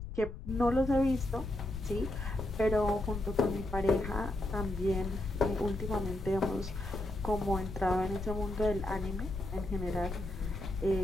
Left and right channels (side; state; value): left; noise; rumble, 9 dB below the sound